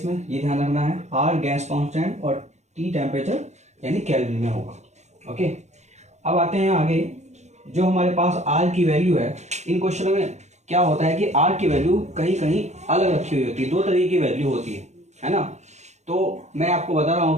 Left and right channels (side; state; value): left; late; 0.33 ms